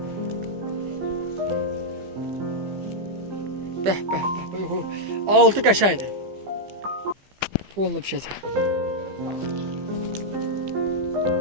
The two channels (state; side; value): late; left; 15 ms